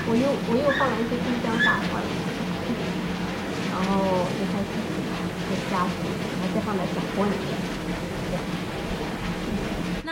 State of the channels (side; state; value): both; identical; correlation 1.00